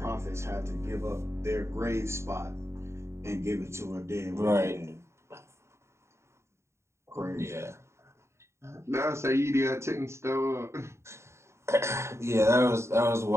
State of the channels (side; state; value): left; late; 0.13 ms